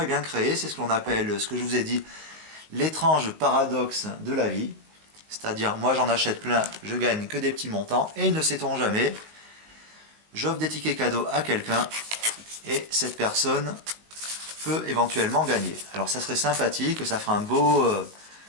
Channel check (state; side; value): late; left; 19 ms